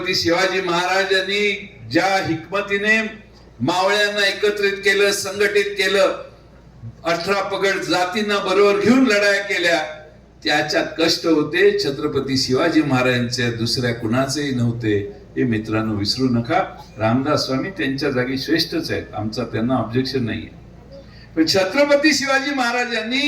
शिवाजी महाराजांनी ज्या हिकमतीने मावळ्यांना एकत्रित केलं, संघटित केलं, 18 पगड जातींना बरोबर घेऊन लढाया केल्या, त्याच्यात कष्ट होते छत्रपती शिवाजी महाराजांचे, दुसऱ्या कुणाचेही नव्हते. हे मित्रांनो विसरू नका. रामदास स्वामी त्यांच्या जागी श्रेष्ठच आहेत, आमचा त्यांना ऑब्जेक्शन नाहीये. पण छत्रपती शिवाजी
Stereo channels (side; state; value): both; identical; correlation 1.00